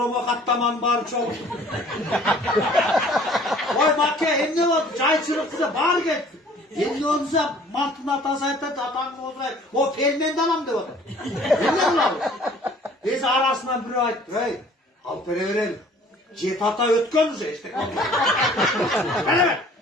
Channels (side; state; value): both; normal; correlation 0.53